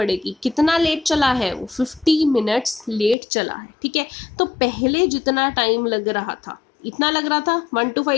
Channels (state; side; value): drops out; right; at 3.2 s